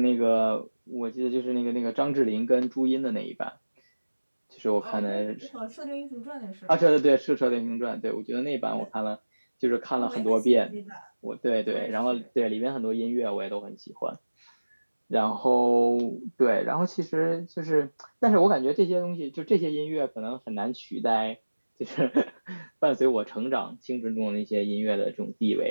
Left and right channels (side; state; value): both; inverted; correlation -1.00